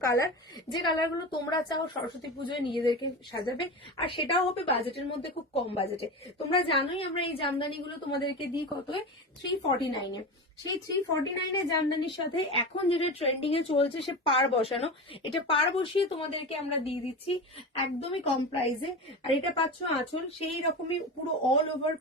কালার, যে কালারগুলো তোমরা চাও সরস্বতী পুজোয় নিজেদেরকে সাজাবে, আর সেটাও হবে বাজেটের মধ্যে, খুব কম বাজেটে। তোমরা জানোই আমরা এই জামদানিগুলো তোমাদেরকে দিই কত, 349-এ। সেই 349 এর জামদানির সাথে এখন যেটা ট্রেন্ডিং এ চলছে সে পাড় বসানো, এটা পাড় বসিয়ে তোমাদেরকে আমরা দিয়ে দিচ্ছি একদমই কম প্রাইসে। আর এটা পাচ্ছ আঁচল, সেই রকমই পুরো অল ওভার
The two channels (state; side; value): normal; both; correlation 0.25